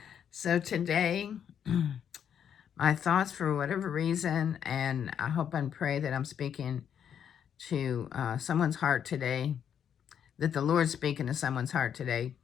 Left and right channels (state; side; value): quieter; right; 8.6 dB